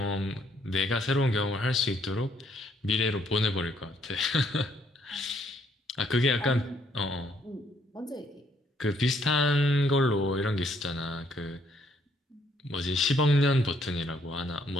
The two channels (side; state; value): both; normal; correlation 0.69